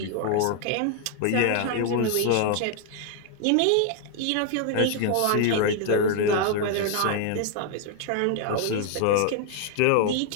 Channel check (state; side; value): different; both; correlation 0.00